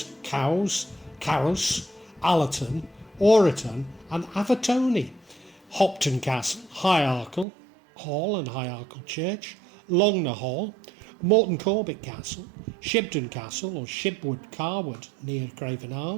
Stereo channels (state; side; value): drops out; left; at 7.5 s